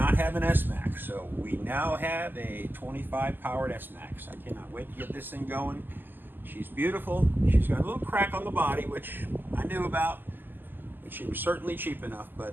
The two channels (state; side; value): late; left; 0.091 ms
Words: have an S-Max, so we now have a 25 powered S-Max. I cannot wait to get this thing going. She's beautiful. She's got a little crack on the body, which I knew about. She was certainly cheap enough,